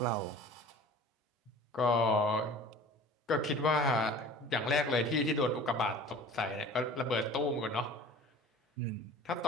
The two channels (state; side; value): normal; both; correlation 0.43